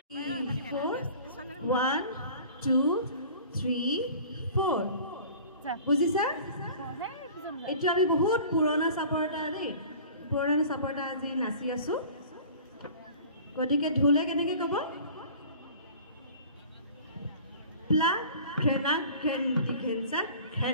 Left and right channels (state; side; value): inverted; both; correlation -0.44